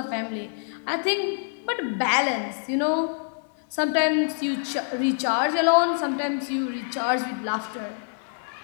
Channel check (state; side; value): silent; right; digital silence